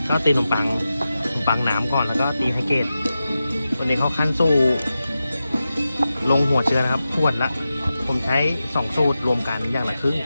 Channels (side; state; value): both; inverted; correlation -0.92